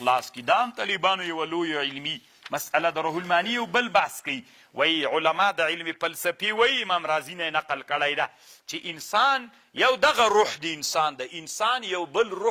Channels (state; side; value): identical; both; correlation 1.00